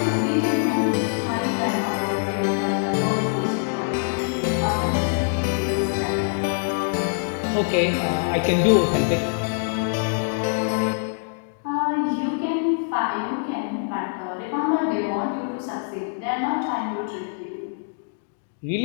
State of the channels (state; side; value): silent; right; digital silence